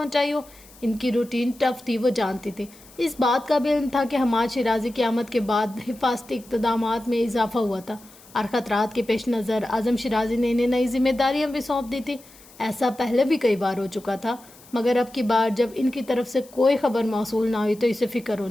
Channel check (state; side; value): noise; left; hiss, 24 dB below the sound